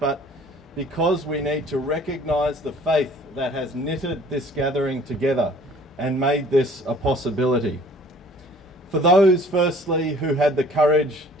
because we need to recognise the faith that has knitted this gathering together and made this a possibility. For those, firstly, who had the courage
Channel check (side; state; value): both; normal; correlation 0.52